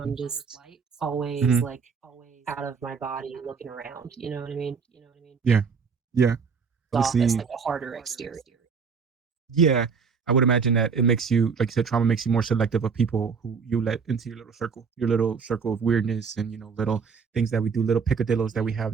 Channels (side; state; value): left; quieter; 5.7 dB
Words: just always mhm. like out of my body looking around. You know what I mean? Yeah, yeah. Off as Obviously, like a harder exterior. yeah. I would imagine that it makes you, like you said, trauma makes you more selective of people who you let into your little circle of weirdness, and little things that we do, little picadillos that we have